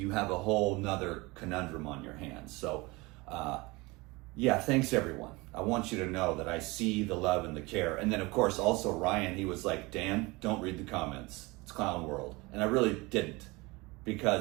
have a whole nother conundrum on your hands. So, yeah, thanks everyone. I want you to know that I see the love and the care. And then of course, also Ryan, he was like, Dan, don't read the comments. It's clown world. And I really didn't,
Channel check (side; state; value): left; quieter; 23.9 dB